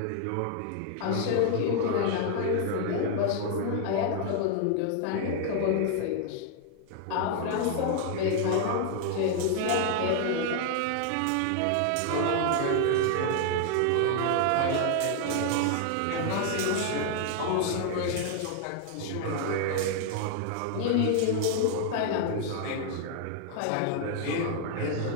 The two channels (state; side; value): different; both; correlation 0.00